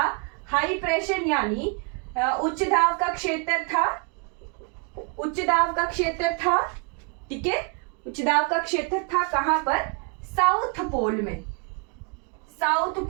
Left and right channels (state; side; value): quieter; left; 37.1 dB